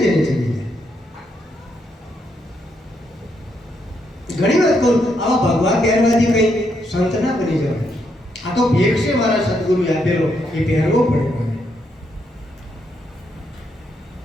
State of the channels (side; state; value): both; normal; correlation 0.78